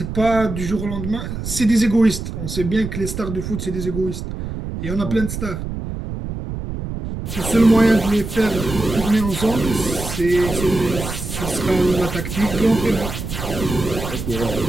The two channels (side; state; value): right; noise; rumble, 6 dB below the sound